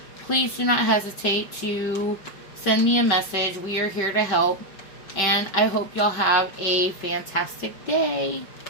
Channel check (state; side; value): late; right; 5.1 ms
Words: please do not hesitate to send me a message. We are here to help. And I hope y'all have a fantastic day.